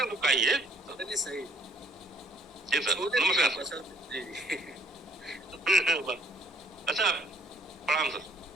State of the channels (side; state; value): both; normal; correlation 0.61